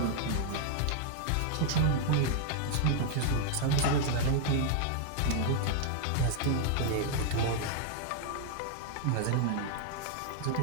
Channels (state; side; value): different; both; correlation -0.01